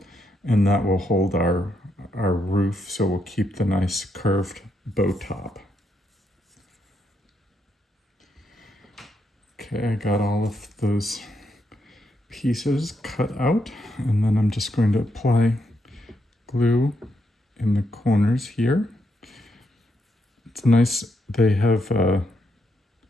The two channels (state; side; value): normal; both; correlation 0.79